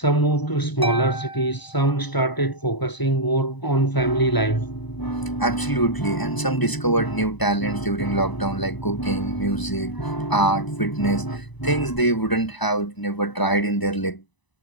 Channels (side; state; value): right; late; 1.0 ms